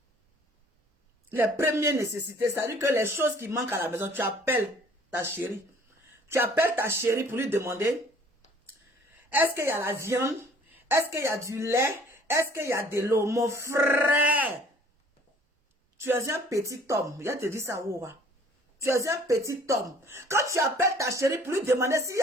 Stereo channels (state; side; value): normal; both; correlation 0.54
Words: les premières nécessités, c'est-à-dire que les choses qui manquent à la maison, tu appelles ta chérie. Tu appelles ta chérie pour lui demander, est-ce qu'il y a la viande? Est-ce qu'il y a du lait? Est-ce qu'il y a de l'eau? Mon frère, tu es un petit homme. Il a te dit ça, ouah. Tu es un petit homme. Quand tu appelles ta chérie pour lui demander s'il y